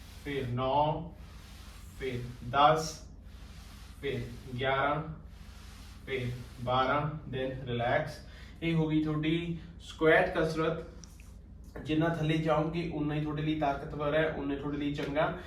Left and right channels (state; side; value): identical; both; correlation 1.00